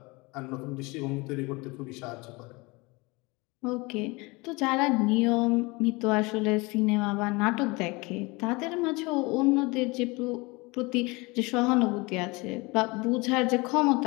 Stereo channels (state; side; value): quieter; right; 25.1 dB